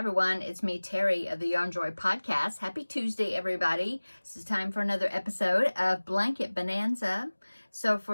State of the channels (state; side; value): inverted; both; correlation -1.00